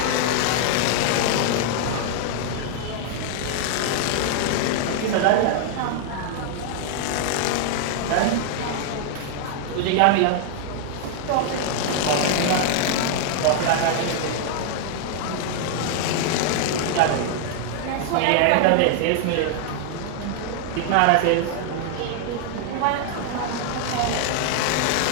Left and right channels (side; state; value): both; different; correlation 0.00